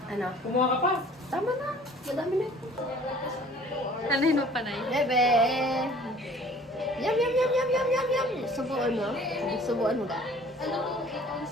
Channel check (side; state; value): both; normal; correlation 0.51